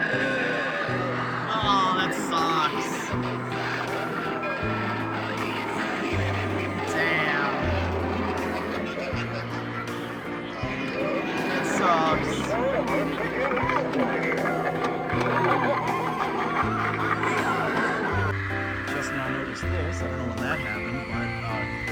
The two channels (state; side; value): identical; both; correlation 1.00